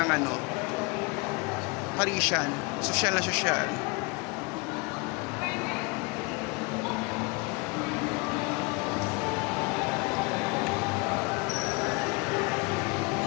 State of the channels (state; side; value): quieter; right; 28.4 dB